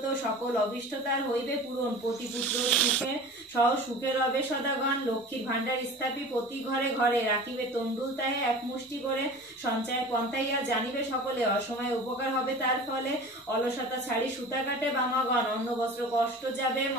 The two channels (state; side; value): normal; both; correlation 0.38